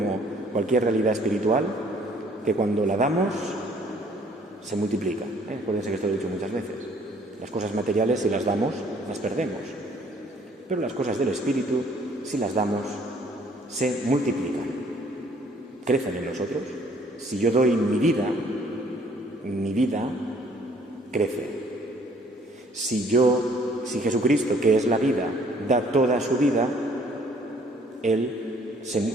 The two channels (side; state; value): both; normal; correlation 0.60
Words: cualquier realidad espiritual, que cuando la damos, se multiplica. Acuérdense que esto lo he dicho muchas veces. Las cosas materiales, si las damos, las perdemos. Pero las cosas del espíritu, si las damos, se multiplican. Crecen en nosotros. Si yo doy mi vida crece. Si Jesucristo, que es la vida, da toda su vida,